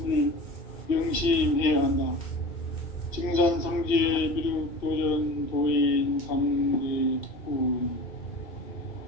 명심해야 한다. 증산상제 미륵도전 도인 강대훈.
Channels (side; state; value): right; late; 2.7 ms